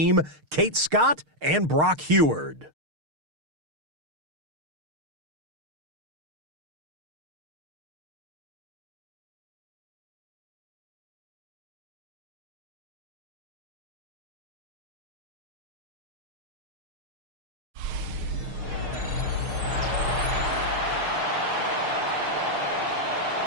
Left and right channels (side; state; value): left; late; 6.5 ms